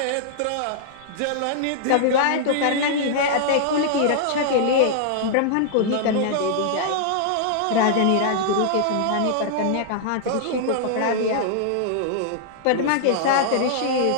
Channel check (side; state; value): both; different; correlation -0.01